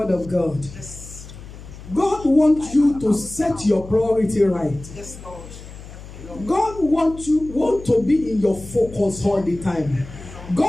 of God. God wants you to set your priority right. God want to be in your focus all the time.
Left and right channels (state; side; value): noise; left; hum, 15 dB below the sound